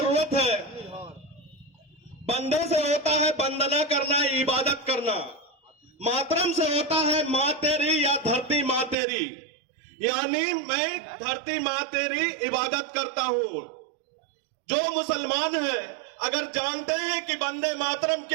है। वंदे से होता है वंदना करना, इबादत करना। मातरम से होता है मां तेरी या धरती मां तेरी, यानी मैं धरती मां तेरी इबादत करता हूं। जो मुसलमान है अगर जानते हैं कि वंदे मातरम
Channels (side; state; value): left; drops out; at 9.0 s